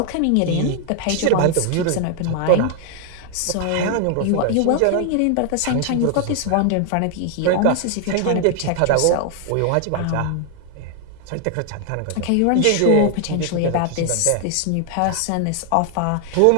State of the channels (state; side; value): different; both; correlation 0.00